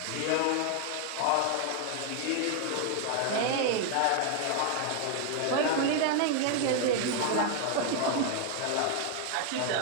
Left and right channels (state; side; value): different; both; correlation 0.00